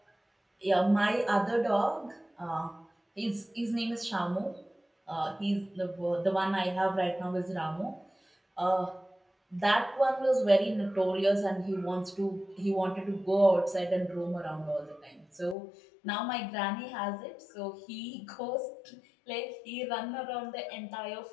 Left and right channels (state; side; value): drops out; right; at 15.6 s